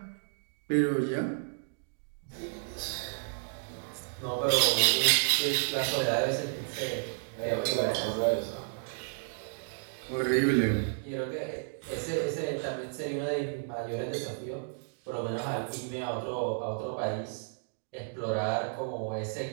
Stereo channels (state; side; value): silent; left; digital silence